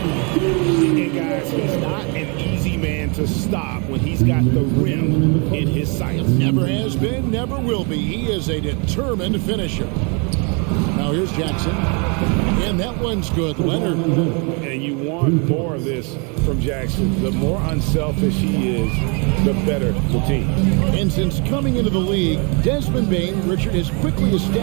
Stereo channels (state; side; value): quieter; left; 33.7 dB